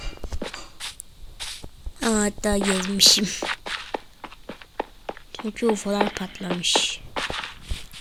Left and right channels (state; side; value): identical; both; correlation 1.00